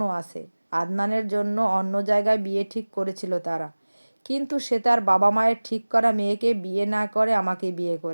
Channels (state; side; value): inverted; both; correlation -1.00